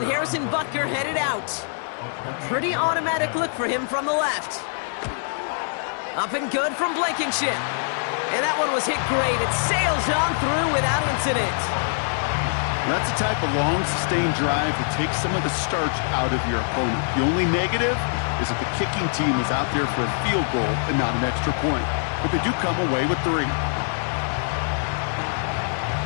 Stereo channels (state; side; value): silent; right; digital silence